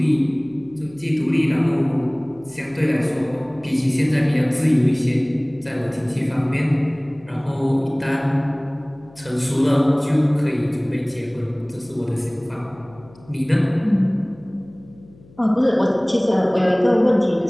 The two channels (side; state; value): left; noise; hum, 25 dB below the sound